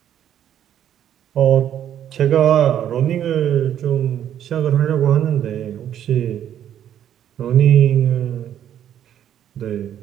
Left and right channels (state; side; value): quieter; left; 10.3 dB